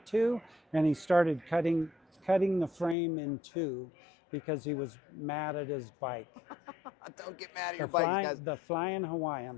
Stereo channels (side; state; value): right; drops out; at 3.0 s